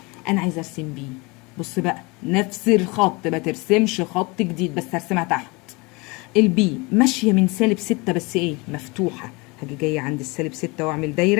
أنا عايزة أرسم B. بص بقى، نفس الخط، ما ترسمش خط جديد، بس هرسمها تحت. البي ماشيه من سالب 6 بس ايه مفتوحه، هاجي جايه عند السالب 6 واعمل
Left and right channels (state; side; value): quieter; right; 26.5 dB